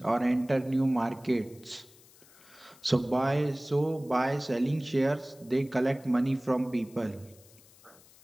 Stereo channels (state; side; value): noise; left; hiss, 25 dB below the sound